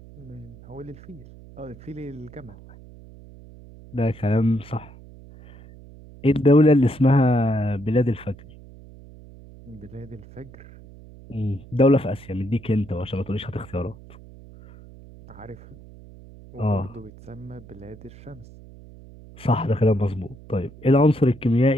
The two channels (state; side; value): noise; right; hum, 20 dB below the sound